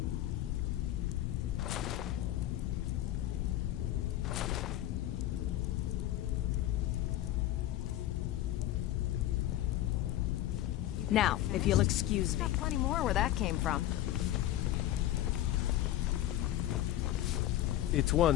Now, if you'll excuse me. Got plenty more where that came from. It's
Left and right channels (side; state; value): right; quieter; 13.6 dB